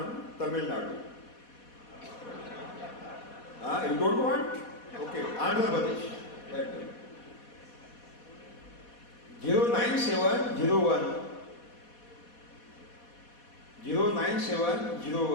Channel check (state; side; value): late; right; 4.2 ms